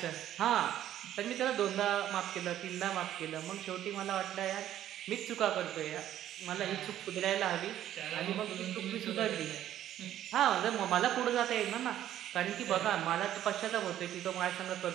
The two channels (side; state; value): left; quieter; 11.9 dB